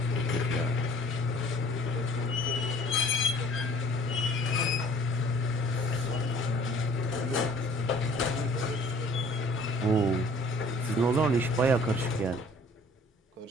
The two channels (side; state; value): both; normal; correlation 0.52